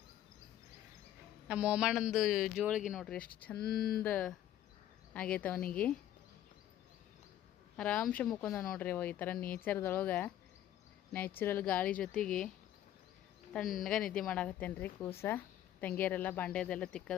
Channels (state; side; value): quieter; right; 11.9 dB